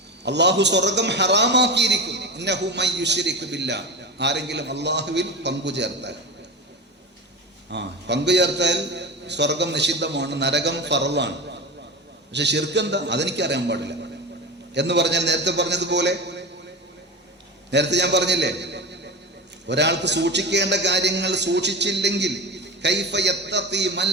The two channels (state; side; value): normal; both; correlation 0.26